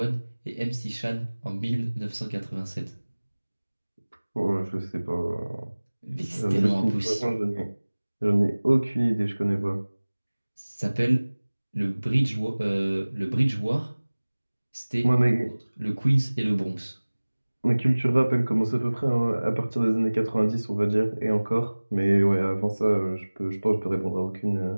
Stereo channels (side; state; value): both; inverted; correlation -1.00